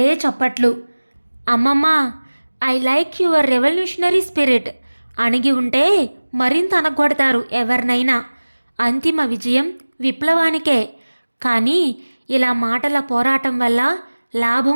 చప్పట్లు. అమ్మమ్మ, I like your revolutionary spirit. అణిగి ఉంటే మరింత అనగొడతారు ఎవరినైనా. అంతిమ విజయం విప్లవానికే. కానీ ఇలా మాటల పోరాటం వల్ల లాభం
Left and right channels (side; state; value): both; inverted; correlation -1.00